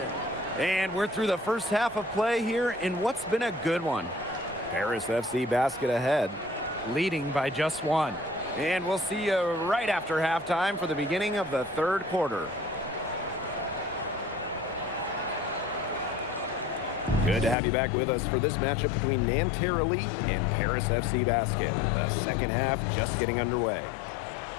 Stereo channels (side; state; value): right; drops out; at 17.6 s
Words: And we're through the first half of play here in what's been a good one. Paris FC basket ahead, leading by just one. And we'll see you right after halftime for the beginning of the third quarter. Good to have you back with us for this matchup between Nanterre Elite and Paris FC Basket. The second half just getting underway.